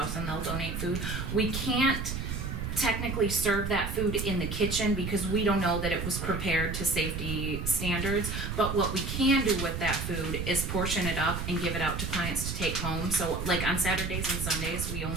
and they'll donate food. We can't technically serve that food in the kitchen because we don't know that it was prepared to safety standards. But what we can do with that food is portion it up and give it out to clients to take home. So like on Saturdays and Sundays, we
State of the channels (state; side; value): noise; right; rumble, 4 dB below the sound